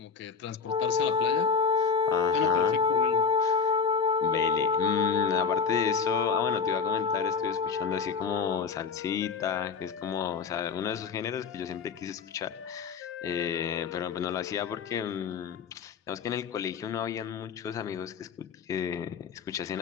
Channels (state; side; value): quieter; right; 5.7 dB